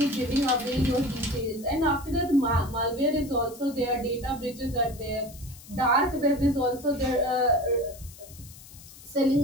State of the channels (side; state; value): left; noise; hiss, 19 dB below the sound